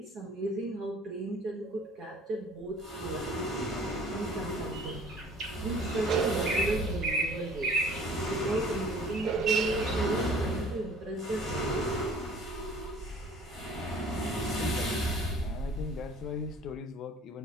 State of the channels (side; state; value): both; normal; correlation 0.51